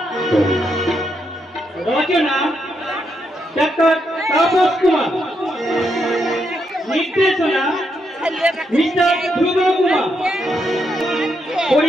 রচনা ডাক্তার তাপস কুমার, নির্দেশনা মিস্টার ধ্রুব কুমার,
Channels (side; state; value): both; normal; correlation 0.80